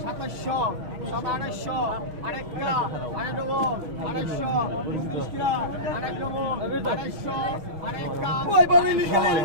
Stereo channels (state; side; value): late; left; 6.4 ms